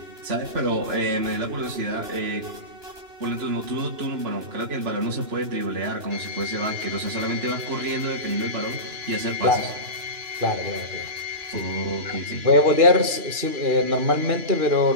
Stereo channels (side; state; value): left; late; 2.9 ms